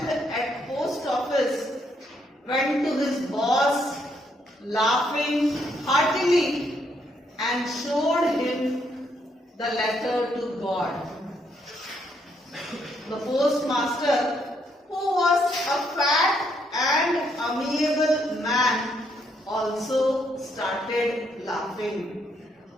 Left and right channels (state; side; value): normal; both; correlation 0.74